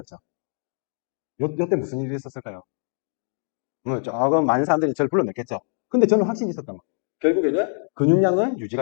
요때 무슨 일이 있었을까요? 조금 많은 사람들이 저를 불러냈겠죠. 근데 저는 확신이 있었던 거예요. 결국에는 근육량은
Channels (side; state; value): right; silent; 63 dB below the other